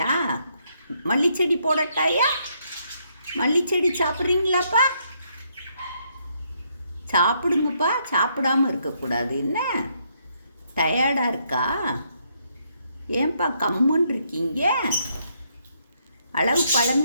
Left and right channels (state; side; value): inverted; both; correlation -0.74